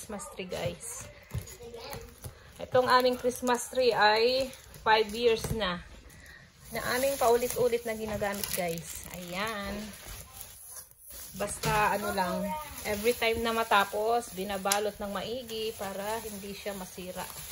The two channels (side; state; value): both; identical; correlation 1.00